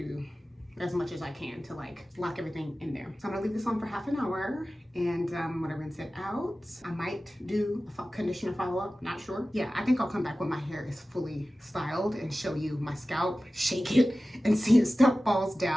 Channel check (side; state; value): both; normal; correlation 0.96